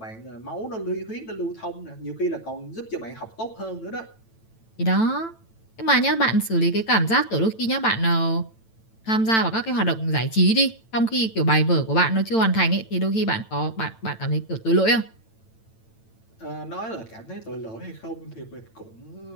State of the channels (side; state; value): right; late; 9.0 ms